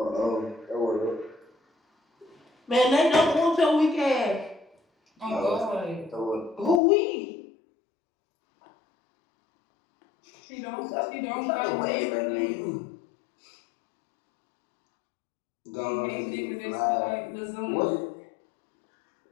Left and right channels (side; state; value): right; drops out; at 6.8 s